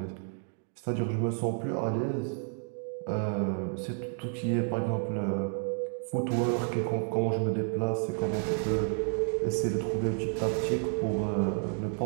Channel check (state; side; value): silent; left; 55 dB below the other